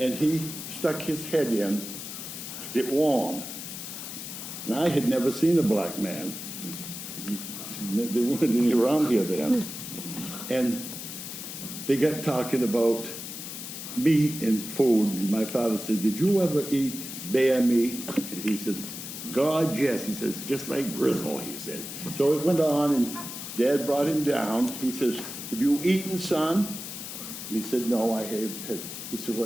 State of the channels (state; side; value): noise; left; hiss, 9 dB below the sound